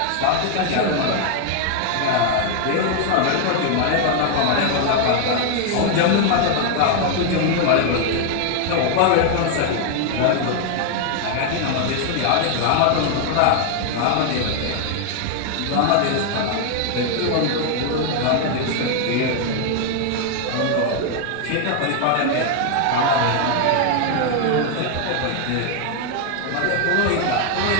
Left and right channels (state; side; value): different; both; correlation 0.00